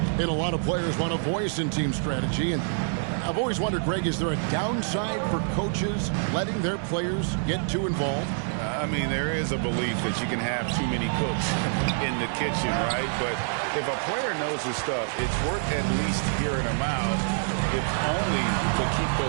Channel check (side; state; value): left; silent; digital silence